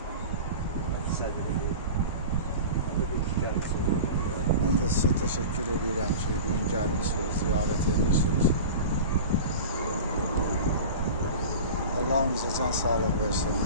sədridir. Ben de size teşekkür ederim ki bugün gelmişsiniz, ziyaret ediyorsunuz. Allah'ımıza can sağlığı versin.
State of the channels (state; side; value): inverted; both; correlation -0.33